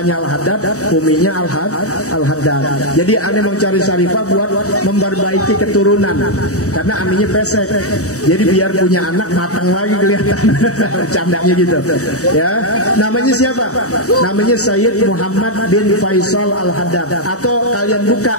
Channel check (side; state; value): right; late; 0.65 ms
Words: Al-Haddad, uminya Al-Haddad. Jadi aneh mencari Syarifah buat memperbaiki keturunan. Karena aminya pesek. Jadi biar punya anak matang lagi kelihatan. Candanya gitu. Ya. Namanya siapa? Namanya Sayyid Muhammad bin Faisal Al-Haddad. Atau kalian buka